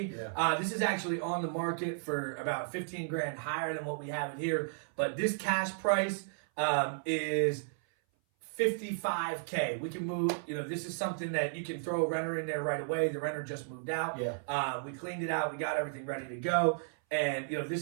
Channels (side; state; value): left; silent; 55 dB below the other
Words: Yeah. This is actually on the market for about 15 grand higher than what we have it here. But this cash price is $55K. We can move, this is something that you can throw a renter in there right away. The renter just moved out. Yeah. We cleaned it out. We got everything ready to go. And,